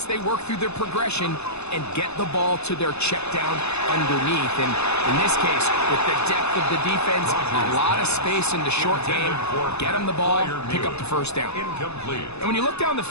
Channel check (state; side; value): late; right; 0.80 ms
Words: they work through their progression and get the ball to their check down underneath. And in this case, with the depth of the defense, a lot of space in the short game, get them the ball, pick up the first down. Incomplete. And when you look down the